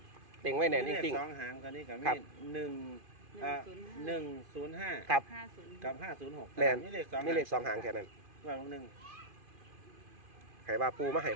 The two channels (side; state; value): left; late; 2.5 ms